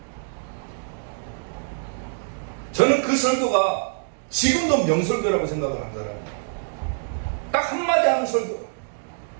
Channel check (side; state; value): left; silent; digital silence